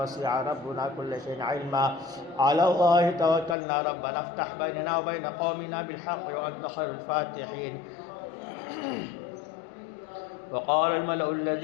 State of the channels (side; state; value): right; drops out; at 3.6 s